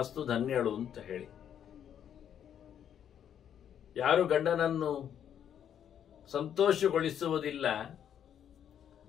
ಧನ್ಯಳು ಅಂತ ಹೇಳಿ. ಯಾರು ಗಂಡನನ್ನು ಸಂತೋಷಗೊಳಿಸುವುದಿಲ್ಲ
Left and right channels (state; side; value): quieter; right; 9.3 dB